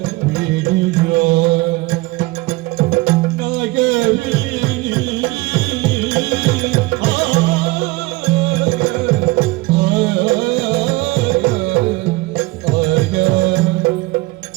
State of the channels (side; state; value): left; quieter; 21.5 dB